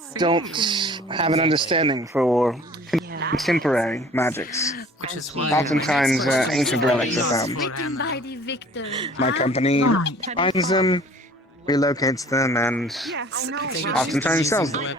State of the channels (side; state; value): both; normal; correlation 0.50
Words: don't have an understanding for contemporary magics. Oftentimes, ancient relics are found. My company finds them, relocates them, and oftentimes sells them.